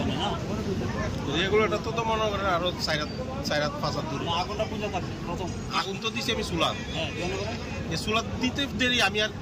রেগুলেটর তো মনে করেন আরো 4-5 দূরে আগুন তো দিছি আমি চুলা এই চুলা দিতে দেরি আমি আর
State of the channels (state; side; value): identical; both; correlation 1.00